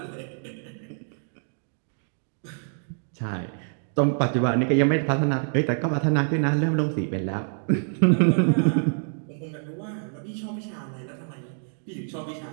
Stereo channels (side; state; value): left; silent; 61 dB below the other